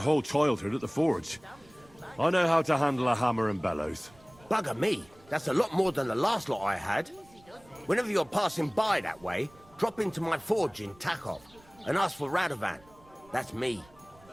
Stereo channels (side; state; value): right; noise; rumble, 27 dB below the sound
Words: childhood at the forge. I know how to handle a hammer and bellows. Bugger me, that's a lot more than the last lot I had. Whenever you're passing by that way, drop into my forge in Takov and ask for Radovan. That's me.